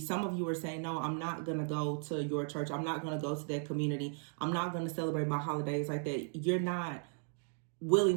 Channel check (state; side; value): silent; left; 54 dB below the other